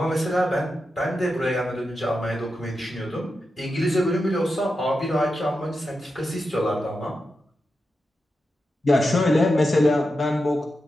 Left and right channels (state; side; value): normal; both; correlation 0.89